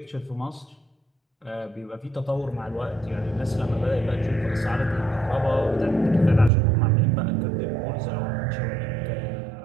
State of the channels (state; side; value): drops out; left; at 6.5 s